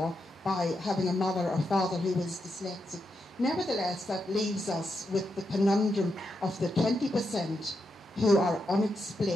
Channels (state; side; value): normal; both; correlation 0.84